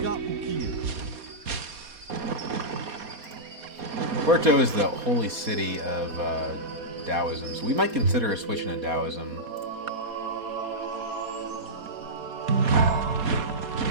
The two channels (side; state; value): left; late; 4.2 ms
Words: Porto is the holy city of Taoism, so we might consider a switch into Taoism.